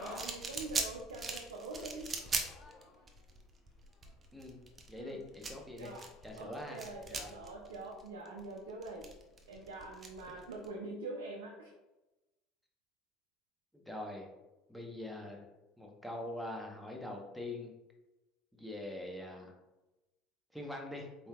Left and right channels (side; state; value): both; normal; correlation 0.54